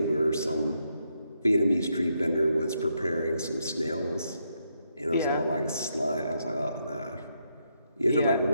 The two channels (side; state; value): both; inverted; correlation -0.79